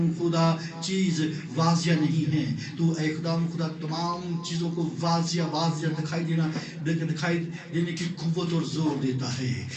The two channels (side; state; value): both; identical; correlation 1.00